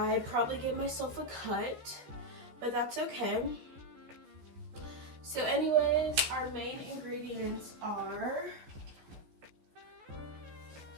probably gave myself a cut, but that's okay. So anyways, our main ingredients are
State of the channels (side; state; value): left; late; 14 ms